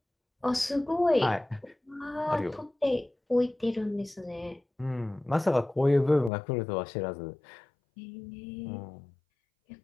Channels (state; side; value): drops out; right; at 6.3 s